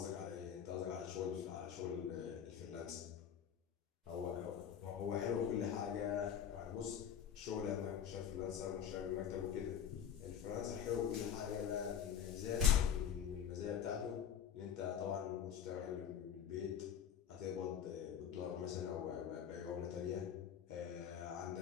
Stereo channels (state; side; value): quieter; right; 8.5 dB